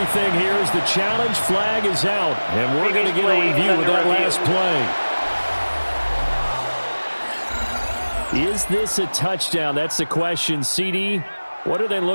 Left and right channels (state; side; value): inverted; both; correlation -1.00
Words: here as the challenge flag is out. And we're going to get a review of that last play. Is this a touchdown? That's the question. CD, what are they